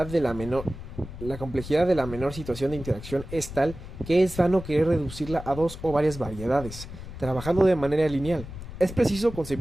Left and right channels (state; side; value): noise; left; rumble, 12 dB below the sound